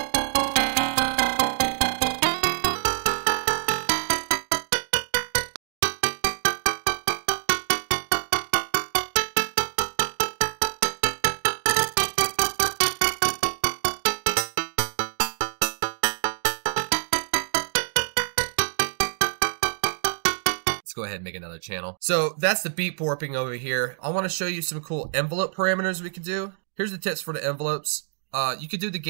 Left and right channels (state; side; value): silent; left; digital silence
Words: Go ahead and make another channel. So that's the beat warping over here. I want to show you some cool envelope parameters we can do. Here's the tips for the envelopes. You could do the